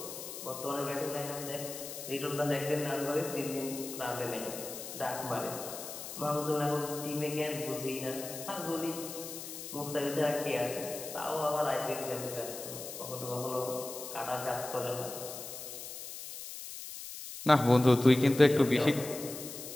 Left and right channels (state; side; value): noise; left; hiss, 9 dB below the sound